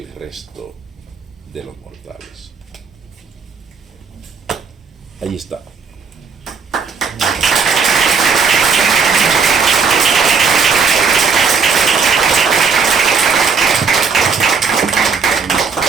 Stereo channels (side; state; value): left; quieter; 5.4 dB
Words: resto de los mortales. Ahí está.